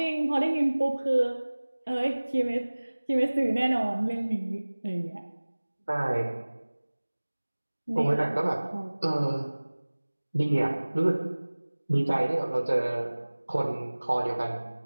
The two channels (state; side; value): inverted; both; correlation -1.00